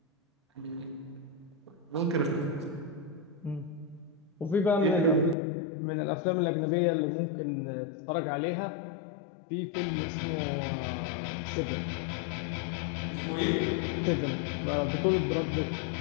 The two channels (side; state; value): right; drops out; at 5.4 s